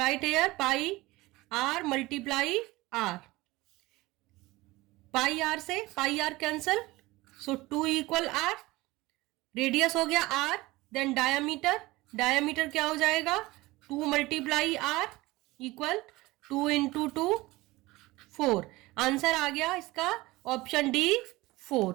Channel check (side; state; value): left; quieter; 20.2 dB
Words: here pi r multiply r. Pi r से pi r cancel, so 2 equal r. Radius हो गया r. Then diameter क्या हो जाएगा 2 multiply r equal 2 into 2 4. Answer आ गया इसका option D